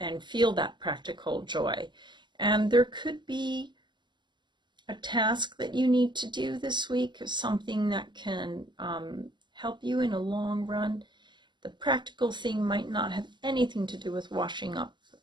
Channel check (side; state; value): left; late; 0.22 ms